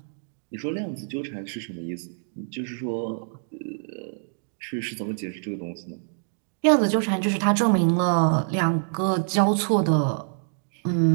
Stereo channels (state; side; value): silent; left; digital silence